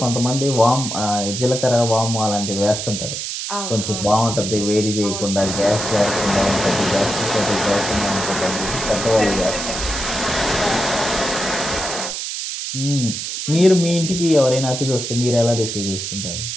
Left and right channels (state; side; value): noise; right; hiss, 5 dB below the sound